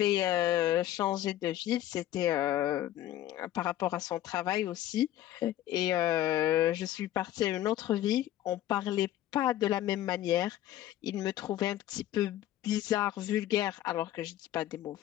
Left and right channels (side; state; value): right; quieter; 13.3 dB